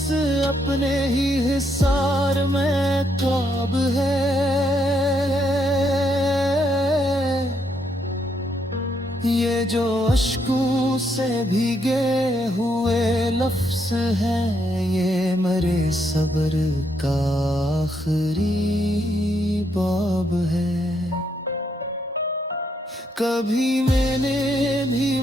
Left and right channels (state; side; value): normal; both; correlation 0.76